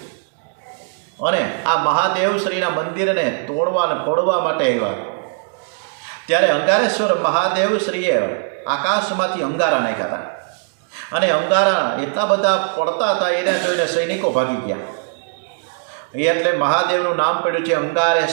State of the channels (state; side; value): silent; left; digital silence